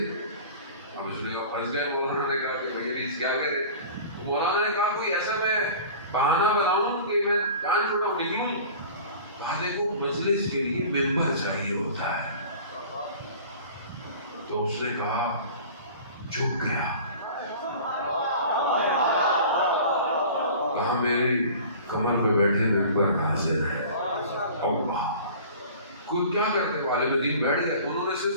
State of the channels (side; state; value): both; inverted; correlation -0.42